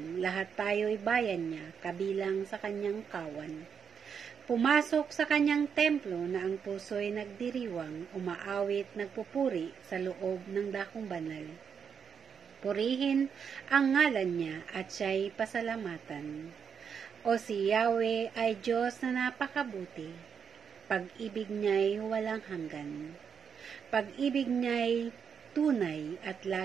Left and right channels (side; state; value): left; quieter; 6.9 dB